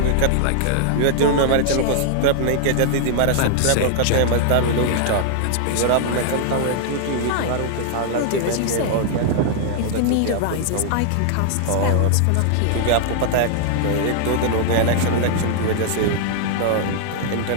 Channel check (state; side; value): different; both; correlation 0.00